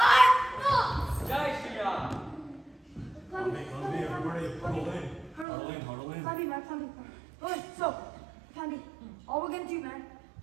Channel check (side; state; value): left; drops out; at 5.5 s